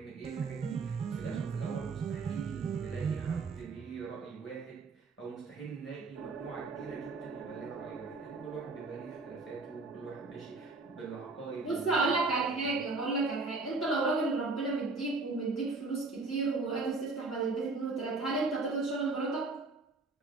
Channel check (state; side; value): quieter; left; 3.7 dB